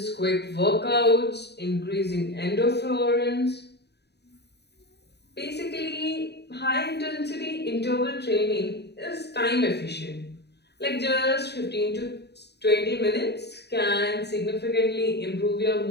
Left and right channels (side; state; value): right; late; 0.48 ms